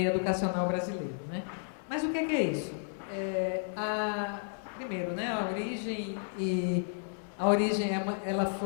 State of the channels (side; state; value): right; silent; digital silence